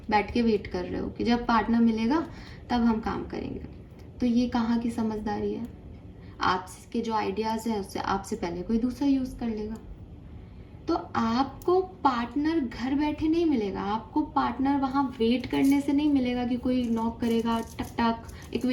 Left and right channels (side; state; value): both; identical; correlation 1.00